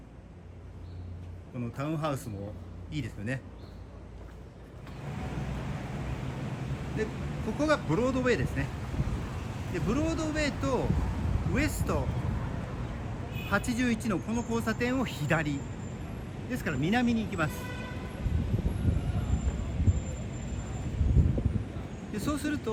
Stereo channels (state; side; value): identical; both; correlation 1.00